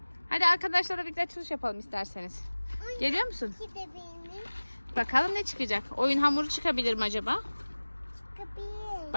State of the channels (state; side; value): inverted; both; correlation -1.00